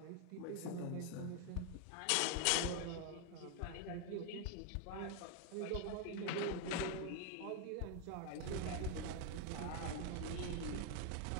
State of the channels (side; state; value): both; different; correlation 0.01